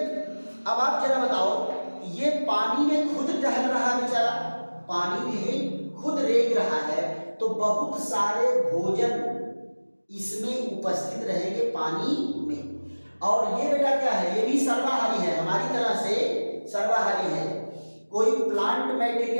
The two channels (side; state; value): both; inverted; correlation -1.00